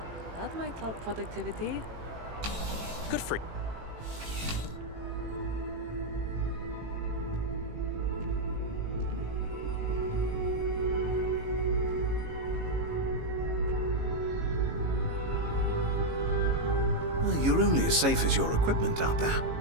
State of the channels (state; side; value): late; left; 18 ms